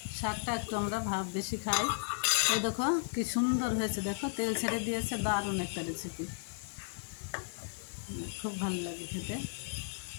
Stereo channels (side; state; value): right; silent; digital silence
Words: শাকটা একটু আমরা বেশি খাই। এই দেখো কি সুন্দর হয়েছে, দেখো তেল ছেড়ে দিয়েছে। দারুণ একটা রেসিপি, খুব ভালো লাগে খেতে।